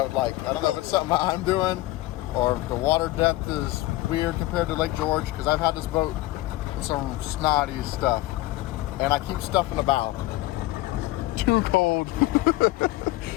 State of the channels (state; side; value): quieter; right; 18.2 dB